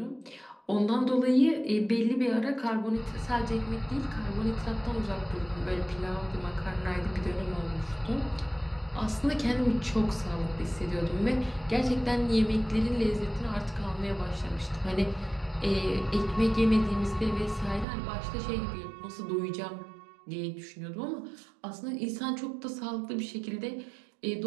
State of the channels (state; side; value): drops out; left; at 17.9 s